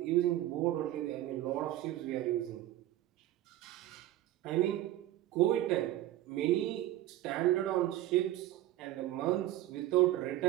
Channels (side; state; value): left; quieter; 14.5 dB